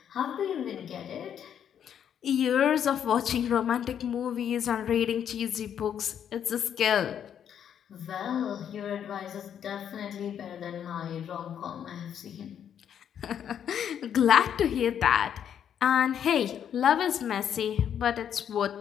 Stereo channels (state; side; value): quieter; right; 9.0 dB